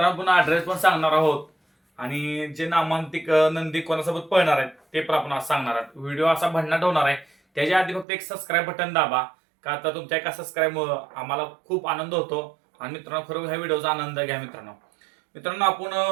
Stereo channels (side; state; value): left; drops out; at 8.1 s